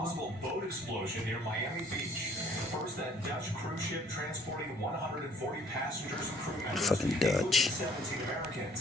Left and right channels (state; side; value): normal; both; correlation 0.58